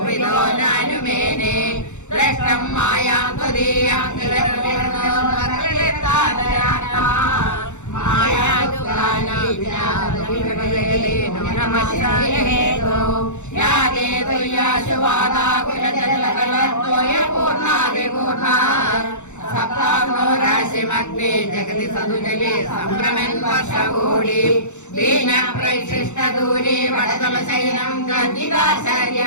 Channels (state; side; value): late; right; 0.84 ms